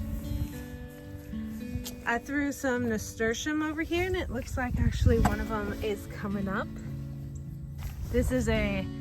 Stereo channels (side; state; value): both; identical; correlation 1.00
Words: I threw some nasturtium over here, and it looks like actually one of them is coming up. This is a